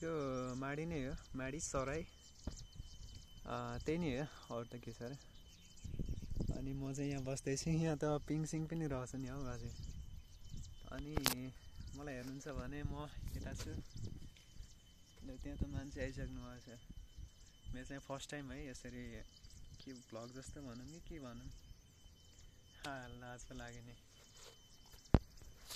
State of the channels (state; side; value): identical; both; correlation 1.00